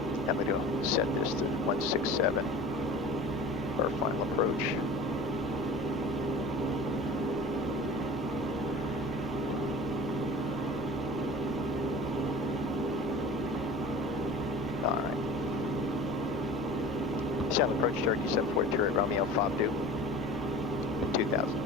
I'm going to set this to 167 for our final approach. All right. Sound approach Cherokee 742 at Romeo 52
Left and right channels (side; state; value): both; normal; correlation 0.39